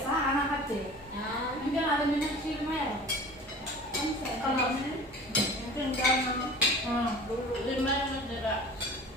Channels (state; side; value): normal; both; correlation 0.41